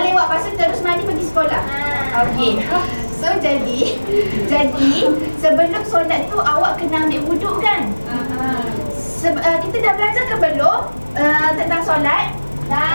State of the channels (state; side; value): inverted; both; correlation -1.00